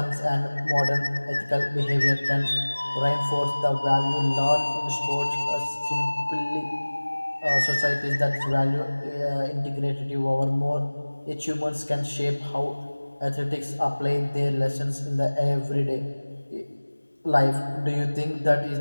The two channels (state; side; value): inverted; both; correlation -1.00